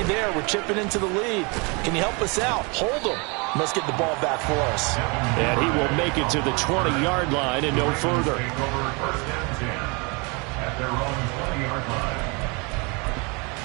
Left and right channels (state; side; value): quieter; left; 30.2 dB